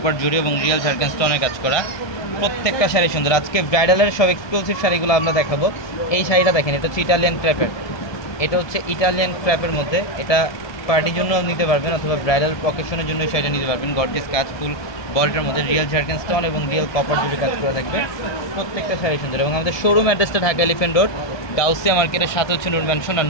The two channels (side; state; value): right; late; 1.2 ms